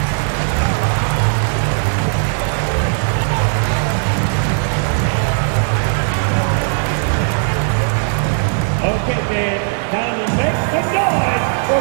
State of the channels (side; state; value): left; silent; digital silence